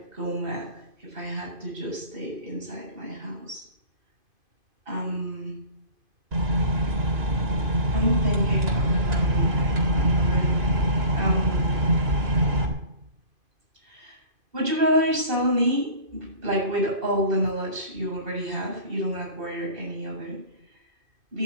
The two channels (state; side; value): late; left; 2.5 ms